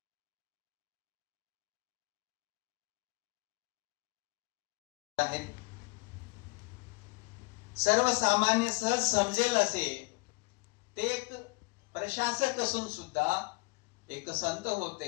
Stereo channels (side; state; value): right; quieter; 27.0 dB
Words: आहेत. सर्वसामान्य सहज समजेल असे ते एक प्रशासक असून सुद्धा एक संत